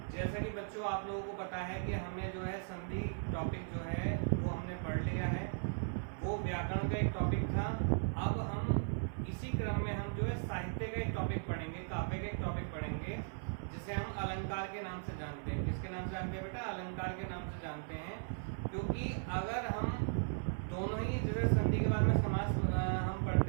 जैसा कि बच्चों आप लोगों को पता है कि हमने जो है संधि टॉपिक जो है वो हमने पढ़ लिया है। वो व्याकरण का एक टॉपिक था। अब हम इसी क्रम में हम जो है साहित्य का एक टॉपिक पढ़ेंगे, काव्य का एक टॉपिक पढ़ेंगे जिसे हम अलंकार के नाम से जानते हैं। किसके नाम से जानते हैं बेटा? अलंकार के नाम से जानते हैं। क्योंकि अगर हम दोनों ही जैसे संधि के बारे में समास हम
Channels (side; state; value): left; silent; 53 dB below the other